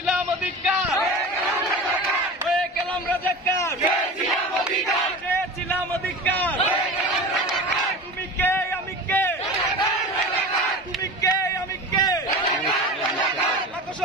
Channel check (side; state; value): both; normal; correlation 0.32